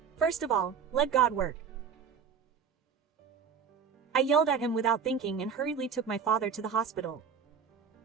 First of all, let God work. I yelled at him without thinking and hurriedly took my father to the hospital.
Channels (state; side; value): quieter; left; 6.7 dB